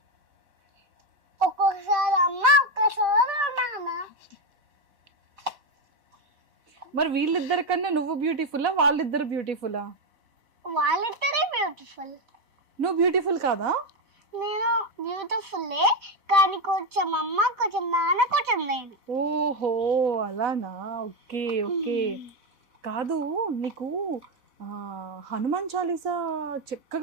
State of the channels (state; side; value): late; left; 4.1 ms